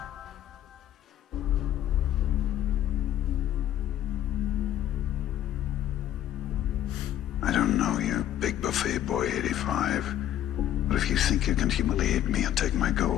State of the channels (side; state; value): right; quieter; 11.7 dB